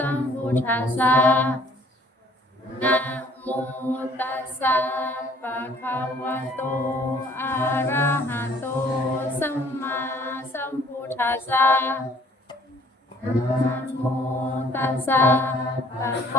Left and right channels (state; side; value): normal; both; correlation 0.57